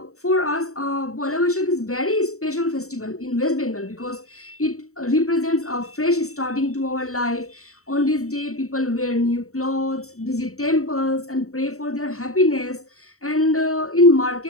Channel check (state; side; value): late; right; 0.64 ms